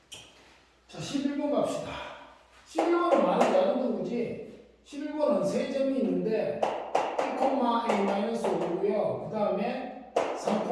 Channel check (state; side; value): identical; both; correlation 1.00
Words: 자, 11번 갑시다. 11번은 많이 다른 거지. 11번은 세 점이 있는데 1,a-5고요. 그 다음에